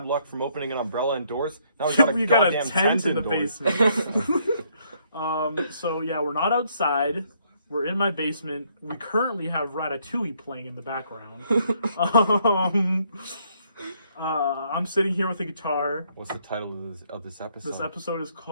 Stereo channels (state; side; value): inverted; both; correlation -0.69